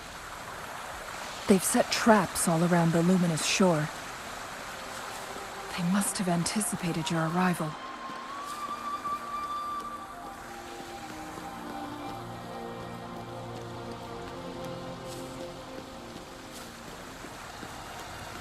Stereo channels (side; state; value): both; identical; correlation 1.00